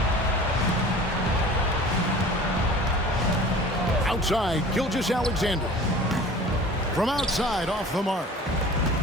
Outside, Gilgeous-Alexander. From outside, off the mark.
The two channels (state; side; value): normal; both; correlation 0.43